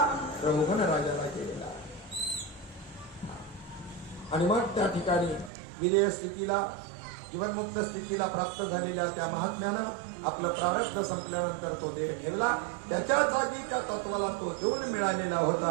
रौवन राजाला केलेला. आणि मग त्या ठिकाणी विदेह स्थितीला, जीवनमुक्त स्थितीला प्राप्त झालेल्या त्या महात्म्यानं आपलं प्रारब्ध संपल्यानंतर तो देह ठेवला. त्याच्या जागी त्या तत्वाला तो देऊन मिळालेला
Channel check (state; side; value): drops out; left; at 5.5 s